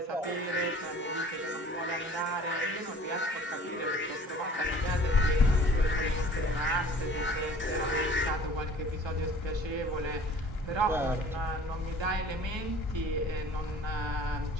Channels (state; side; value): normal; both; correlation 0.49